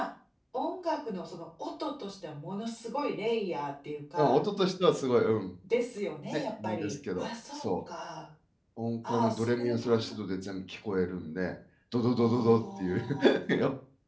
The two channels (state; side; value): identical; both; correlation 1.00